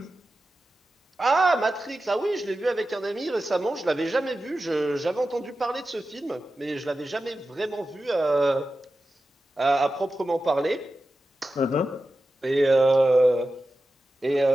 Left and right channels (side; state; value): both; normal; correlation 0.93